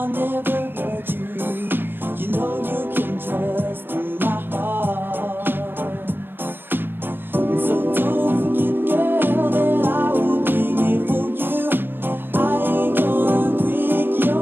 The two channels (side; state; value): left; late; 0.10 ms